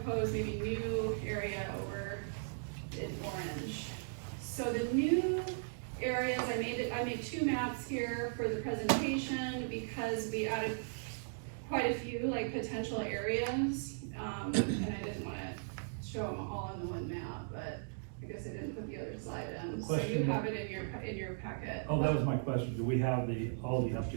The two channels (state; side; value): silent; left; digital silence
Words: maybe new area over in orange. So the new areas, I made two maps here for the presentation because we added quite a few like potential areas, and I didn't want to show them all in the one map, but I guess I didn't put the other slide in. So you have it in your packet. Oh, that was my question. Do we have all the